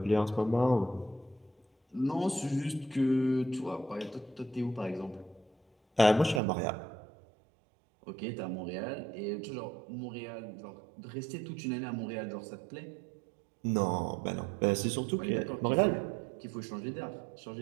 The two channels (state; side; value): drops out; left; at 6.4 s